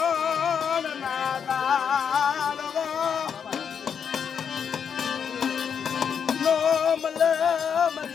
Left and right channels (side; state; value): right; quieter; 7.3 dB